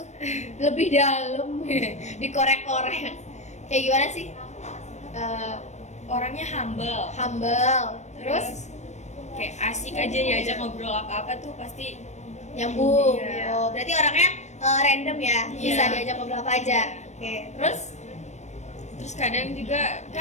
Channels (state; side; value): late; right; 0.34 ms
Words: Lebih dalam, dikorek-korek. Kayak gimana sih? Orangnya humble. Humble, terus Kayak asik aja diajak ngobrol apa-apa tuh pasti nyambung. Iya. Oh, berarti orangnya random ya, bisa Iya. diajak ngobrol apa aja. Oke, terus kadang juga